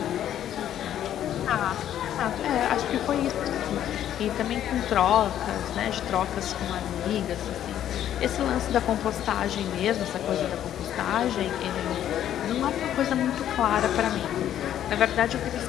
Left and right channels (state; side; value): quieter; right; 11.0 dB